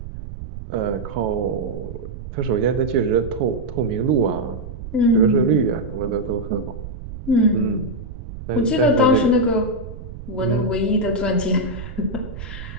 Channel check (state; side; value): noise; right; rumble, 11 dB below the sound